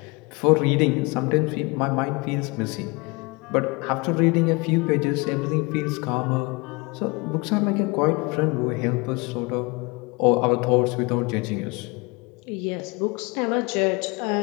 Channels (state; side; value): quieter; right; 27.2 dB